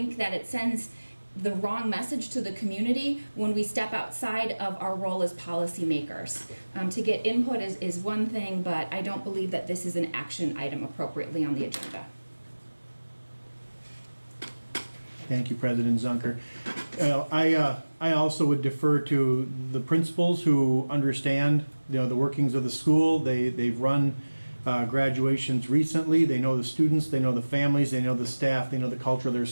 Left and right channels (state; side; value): inverted; both; correlation -1.00